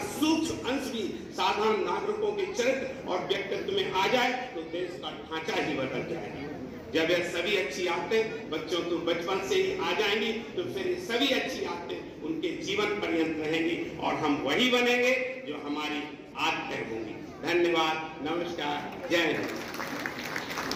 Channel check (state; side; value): identical; both; correlation 1.00